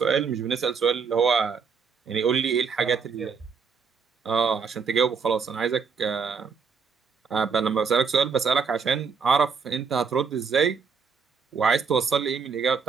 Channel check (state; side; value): quieter; left; 5.7 dB